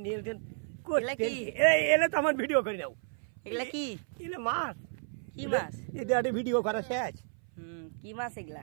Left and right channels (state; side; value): silent; left; 56 dB below the other